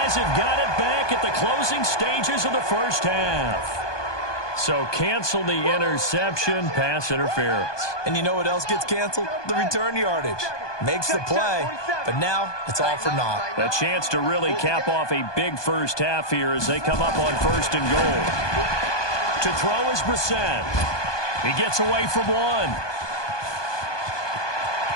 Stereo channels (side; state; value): right; late; 1.2 ms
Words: have got it back at the closing stages of the first half. So cancel the interception, pass interference. And you know what else gets canceled? The return yardage. Makes the play, but now it's all for naught. A chance to really cap off a big first half here as they come up on 1st and goal. To throw is Brissett. He gets away from one.